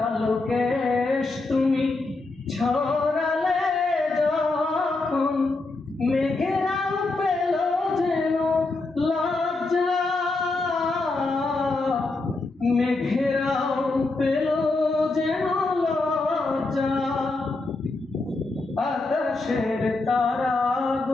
কেশ তুমি ছড়ালে যখন, মেঘেরাও পেল যেন লজ্জা, মেঘেরাও পেল যেন লজ্জা। আকাশের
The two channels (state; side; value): quieter; right; 3.3 dB